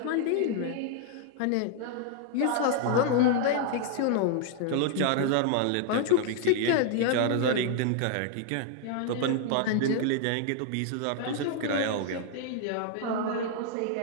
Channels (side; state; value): both; different; correlation 0.00